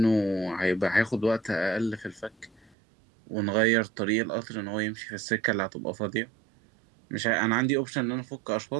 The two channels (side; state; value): left; drops out; at 2.8 s